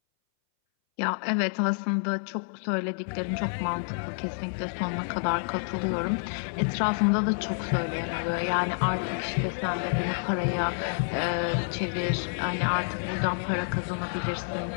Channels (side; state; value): right; silent; 59 dB below the other